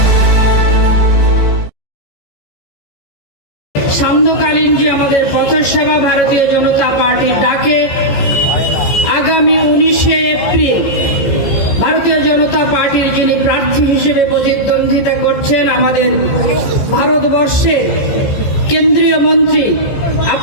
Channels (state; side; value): late; right; 14 ms